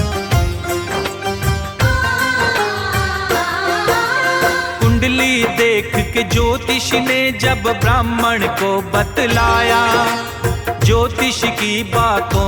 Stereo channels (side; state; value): both; identical; correlation 1.00